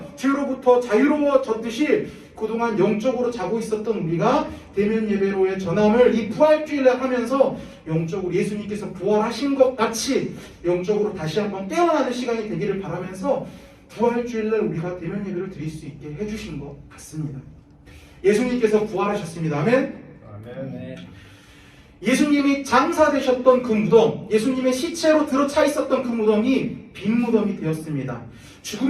죄로부터 자유로워졌듯이 그동안 영적으로 자고 있었던 우리가 대면 예배로의 전함을 이 부활주일날 하면서 영적으로 예수님께서 부활하신 것 같이 영적으로 다시 한번 깨어나는 시간이 되기를 바라면서 부활주일날 우리가 대면 예배를 드릴 수 있게 해주신 것 같습니다. 예수님께서 부활하셨습니다. 아멘. 아멘. 예수님이 장사되셨던 그 무덤, 예수님의 시체로 들어차 있었던 그 무덤이 빈 무덤이 되었습니다.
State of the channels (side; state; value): both; identical; correlation 1.00